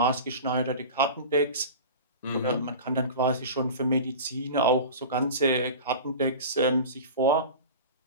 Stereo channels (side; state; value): both; inverted; correlation -0.33